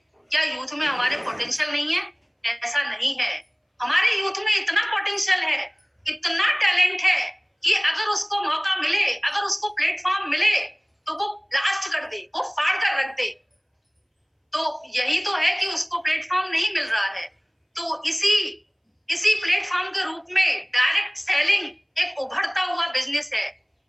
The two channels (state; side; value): identical; both; correlation 1.00